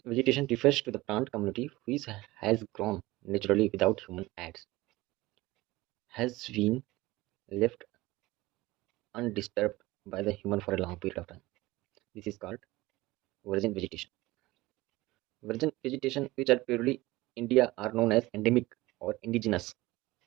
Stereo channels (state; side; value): quieter; left; 19.6 dB